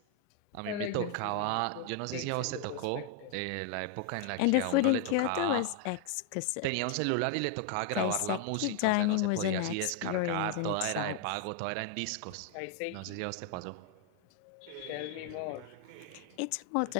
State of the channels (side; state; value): both; different; correlation 0.00